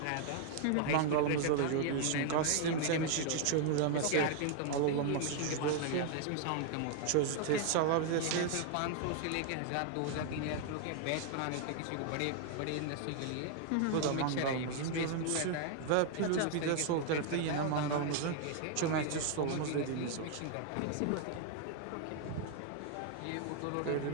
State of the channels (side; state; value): both; different; correlation 0.00